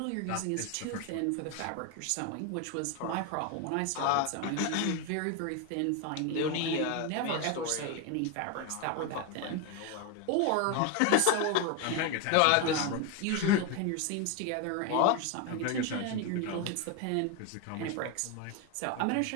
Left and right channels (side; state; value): both; different; correlation 0.02